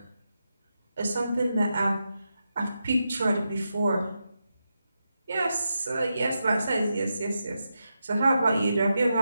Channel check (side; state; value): both; inverted; correlation -0.87